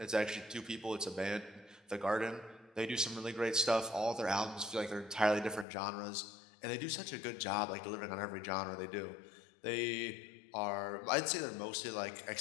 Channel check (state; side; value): drops out; right; at 5.7 s